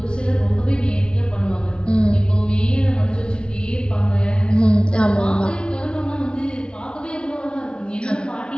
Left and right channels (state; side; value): late; right; 0.055 ms